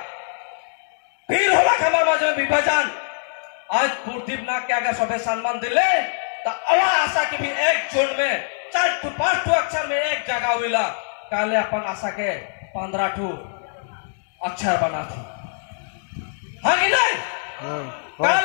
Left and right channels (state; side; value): silent; right; digital silence